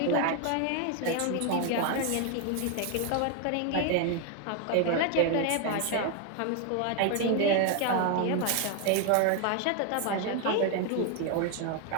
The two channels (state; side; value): different; both; correlation 0.01